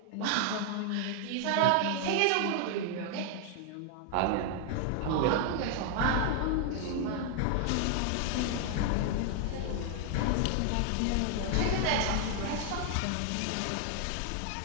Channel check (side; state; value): both; different; correlation 0.00